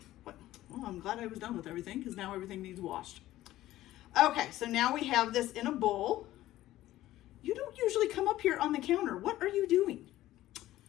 What? Well, I'm glad I was done with everything because now everything needs washed. Okay, so now we have this in a bowl. You don't usually come up here on the counter. What are you doing?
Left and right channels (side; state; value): right; quieter; 15.0 dB